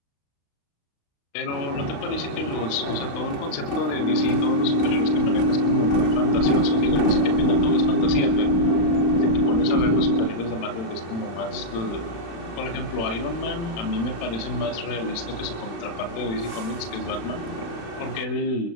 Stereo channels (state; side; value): late; right; 35 ms